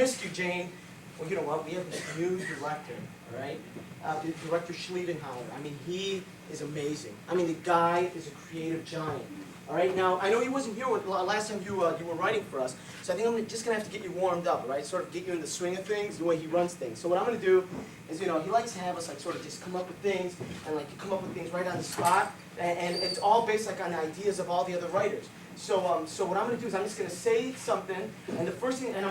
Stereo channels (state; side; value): identical; both; correlation 1.00